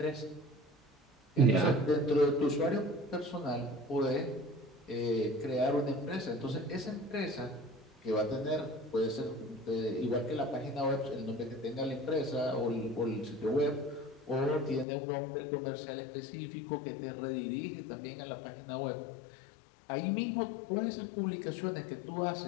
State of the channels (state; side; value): drops out; right; at 14.9 s